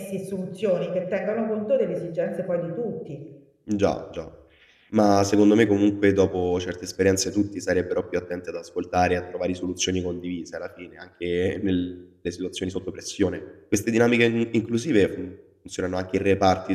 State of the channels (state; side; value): identical; both; correlation 1.00